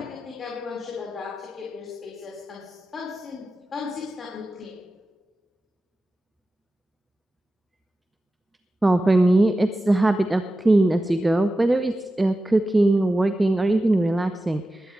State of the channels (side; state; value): both; normal; correlation 0.94